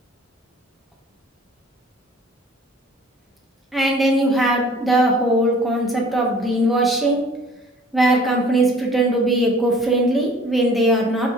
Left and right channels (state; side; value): normal; both; correlation 0.51